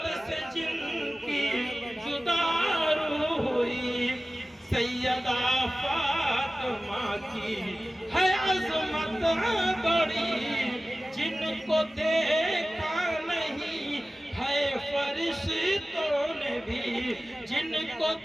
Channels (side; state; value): both; normal; correlation 0.96